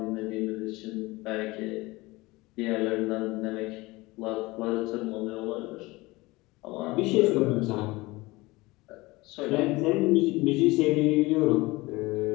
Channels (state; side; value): quieter; right; 21.7 dB